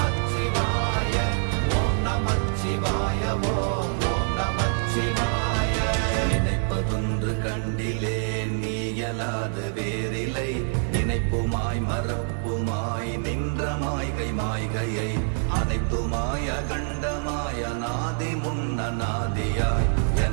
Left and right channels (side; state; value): left; silent; 61 dB below the other